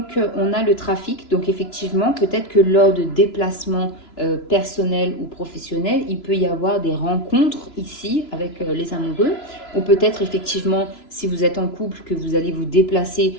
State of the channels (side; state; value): right; late; 3.0 ms